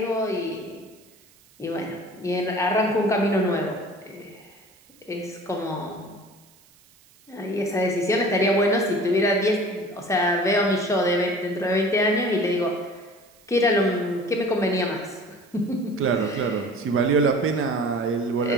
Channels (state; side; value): noise; right; hiss, 29 dB below the sound